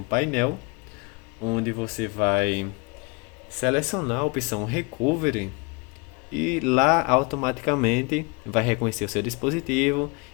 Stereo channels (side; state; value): right; quieter; 29.2 dB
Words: painel onde você vai selecionar a opção Recovery e lá automaticamente vai reconhecer o seu dispositivo